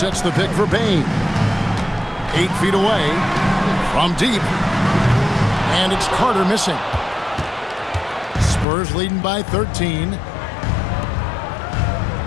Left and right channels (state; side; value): drops out; right; at 8.7 s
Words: the pick for Bain. 8 feet away from deep. And it's Carter missing. Spurs leading by 13.